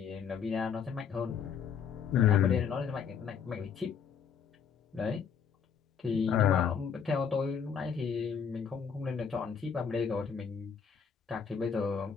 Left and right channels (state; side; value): quieter; right; 6.9 dB